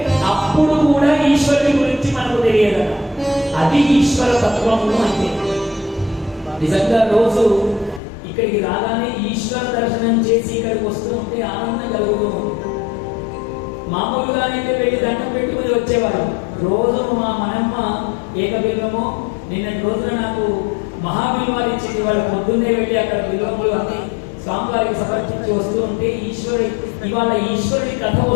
అప్పుడు కూడా ఈశ్వరుని గురించి మనకు తెలియదు. అది ఈశ్వర తత్వము అంటే. నిజంగా రోజు ఇక్కడికి రాగానే ఈశ్వర దర్శనం చేసి ఇక్కడికి వస్తూ ఉంటే ఆనందం కలుగుతూ ఉంటుంది. మామూలుగానైతే వెళ్ళి దండం పెట్టుకుని వచ్చేవాడు. రోజు మా మనమ్మ ఏకబిల్వము నిన్నటి రోజున నాకు మహాబిల్వాలు ఇచ్చింది. వాళ్ళు పొద్దున్నే వెళ్ళి అక్కడ బిల్వములు అన్ని స్వామివారికి సమర్పించి వస్తూ ఉంటే ఇవాళ ఈశ్వరుడి కథ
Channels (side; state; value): right; drops out; at 8.0 s